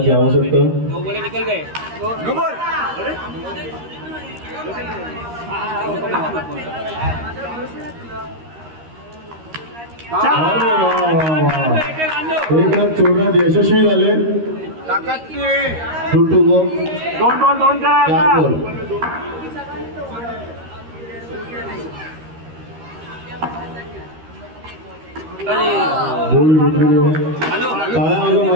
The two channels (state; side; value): late; left; 13 ms